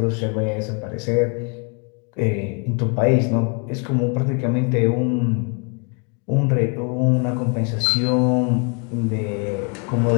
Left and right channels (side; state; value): right; quieter; 36.9 dB